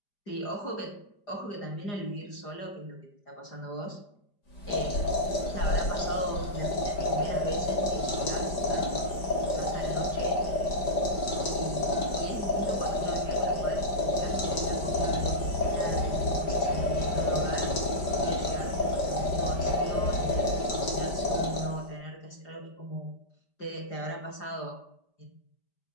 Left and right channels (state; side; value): late; right; 5.0 ms